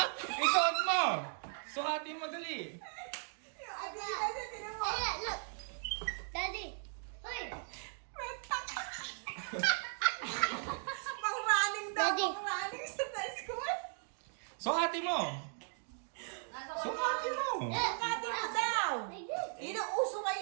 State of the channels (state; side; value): silent; left; 53 dB below the other